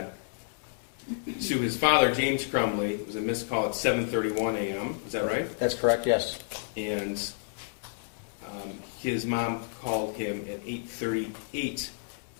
To his father, James Crumbley, it was a missed call at 7:31 a.m. Is that right? That's correct, yes. And his mom called him at 8:38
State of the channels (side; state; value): right; silent; digital silence